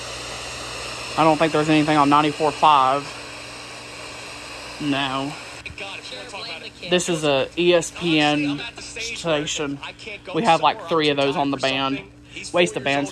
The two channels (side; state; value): both; identical; correlation 1.00